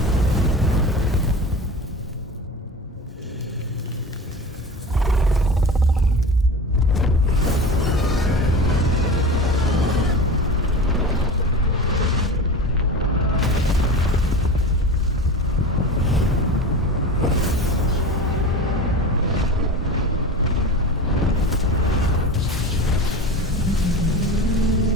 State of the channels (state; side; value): normal; both; correlation 0.31